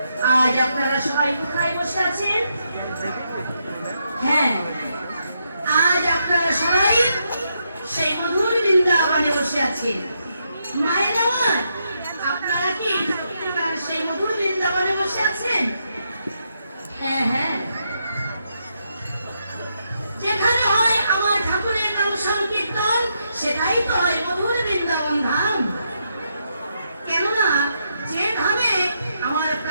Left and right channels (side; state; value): both; inverted; correlation -0.80